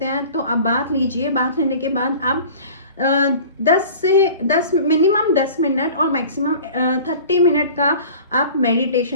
हैं तो आप बाथ लीजिए। बाथ लेने के बाद आप 10 मिनिमम 10 मिनट और मैक्सिमम 30 मिनट का आप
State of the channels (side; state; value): both; inverted; correlation -0.43